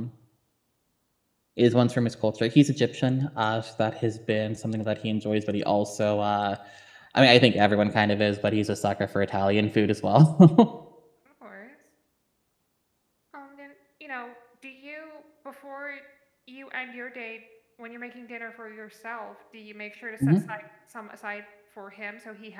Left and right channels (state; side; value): identical; both; correlation 1.00